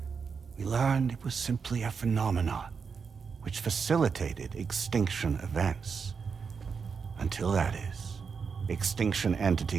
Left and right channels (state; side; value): quieter; left; 5.7 dB